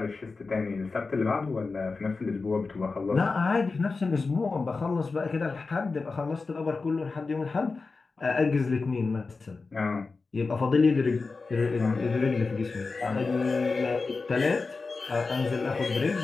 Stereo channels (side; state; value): right; quieter; 4.1 dB